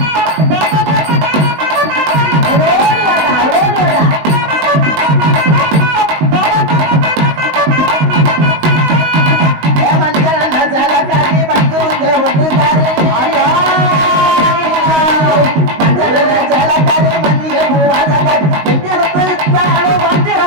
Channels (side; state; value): left; late; 19 ms